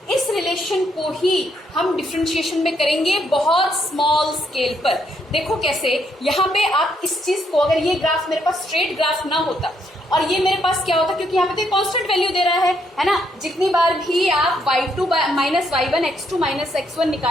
इस रिलेशन को ही हम डिफरेंशिएशन में करेंगे बहुत स्मॉल स्केल पर। देखो कैसे, यहाँ पे आप इस चीज को, अगर ये ग्राफ मेरे पास स्ट्रेट ग्राफ ना होता और ये मेरे पास क्या होता, क्योंकि यहाँ पे तो कांस्टेंट वैल्यू दे रहा है ना। जितनी बार भी आप y2 minus y1 x2 minus x1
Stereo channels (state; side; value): normal; both; correlation 0.74